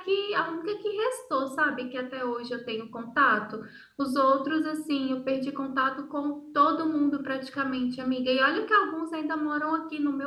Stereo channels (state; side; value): identical; both; correlation 1.00